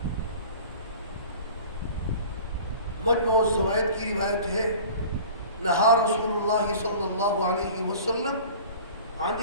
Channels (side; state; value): both; inverted; correlation -0.43